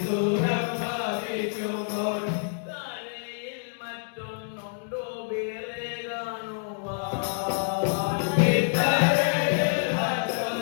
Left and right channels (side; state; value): right; silent; digital silence